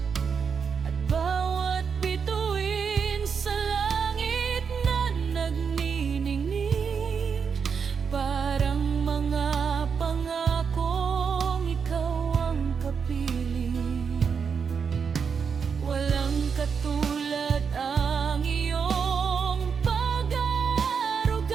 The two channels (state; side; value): quieter; left; 6.2 dB